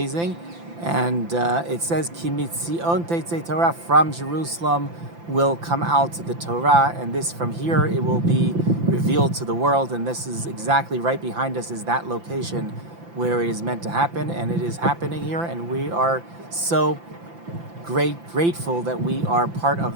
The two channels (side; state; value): left; late; 5.9 ms